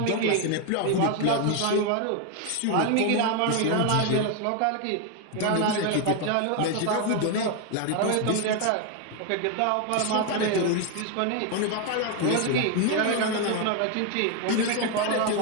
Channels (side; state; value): both; different; correlation 0.01